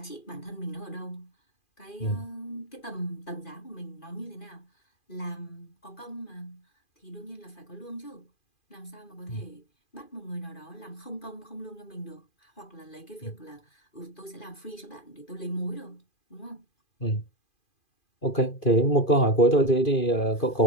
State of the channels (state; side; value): late; right; 2.4 ms